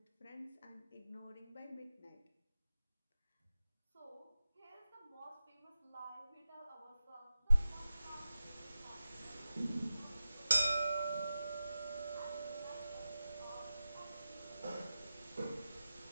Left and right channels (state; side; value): inverted; both; correlation -0.92